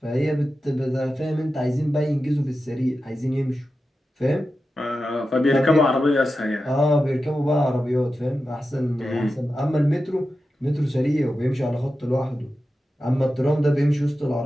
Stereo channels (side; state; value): both; normal; correlation 0.92